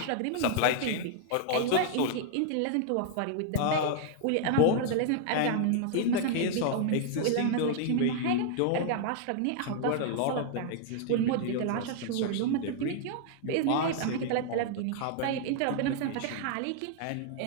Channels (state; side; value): different; both; correlation 0.00